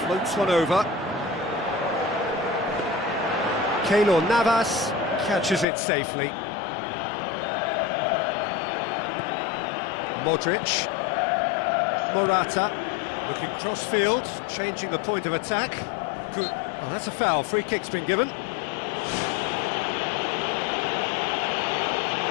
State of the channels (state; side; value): drops out; right; at 5.7 s